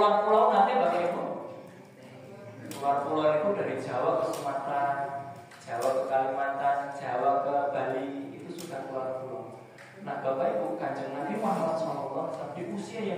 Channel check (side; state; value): both; identical; correlation 1.00